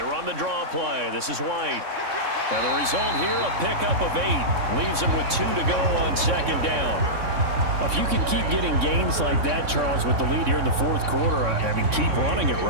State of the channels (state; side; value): late; left; 3.6 ms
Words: run the draw play. This is White. And the result here, a pickup of 8. Leaves him with 2 to go on second down. If you can keep getting gains like that, Charles, with the lead here in the fourth quarter, I mean, keep running it,